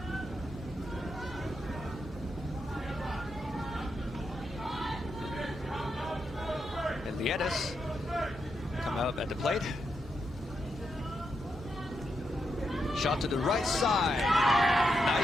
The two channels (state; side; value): normal; both; correlation 0.83